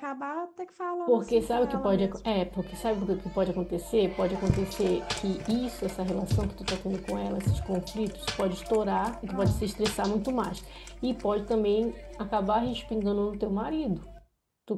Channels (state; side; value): identical; both; correlation 1.00